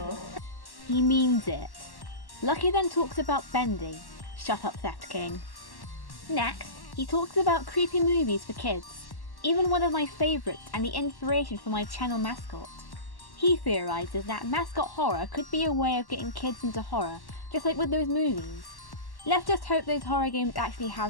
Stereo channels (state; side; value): late; right; 1.1 ms